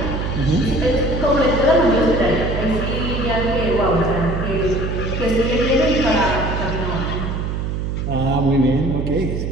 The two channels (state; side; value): noise; right; hum, 2 dB below the sound